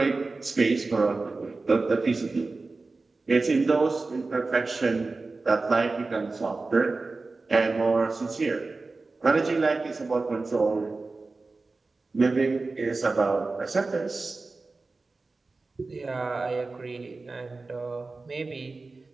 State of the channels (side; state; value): left; quieter; 3.7 dB